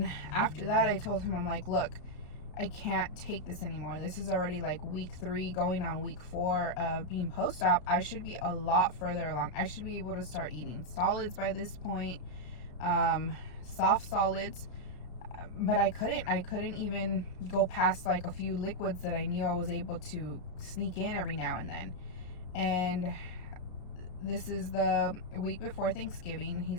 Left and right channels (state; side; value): late; right; 33 ms